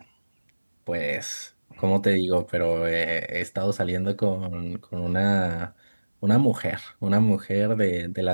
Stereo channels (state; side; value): inverted; both; correlation -1.00